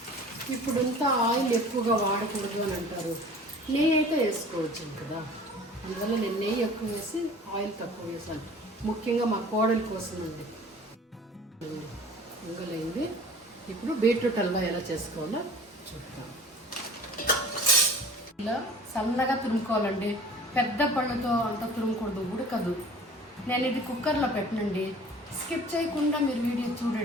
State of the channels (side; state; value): both; normal; correlation 0.45